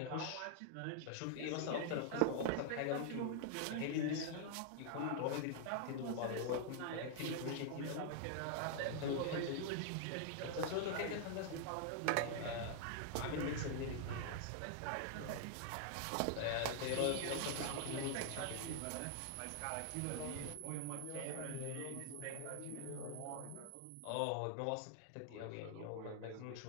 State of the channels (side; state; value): both; different; correlation -0.01